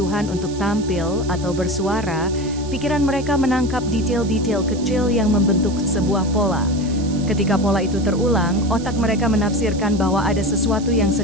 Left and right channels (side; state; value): right; noise; hiss, 17 dB below the sound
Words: untuk tampil atau bersuara, pikiran mereka menangkap detail-detail kecil yang membentuk sebuah pola. Ketika pola itu terulang, otak mereka menafsirkan bahwa ada sesuatu yang